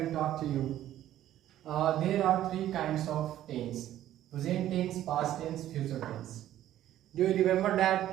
talk to you. There are three kinds of tense: present tense, past tense, future tense. Do you remember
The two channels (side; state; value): left; quieter; 12.6 dB